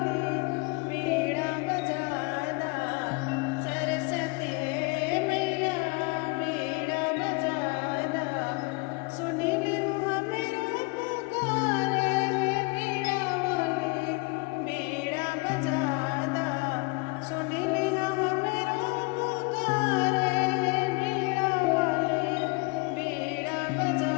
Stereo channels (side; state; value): right; quieter; 28.1 dB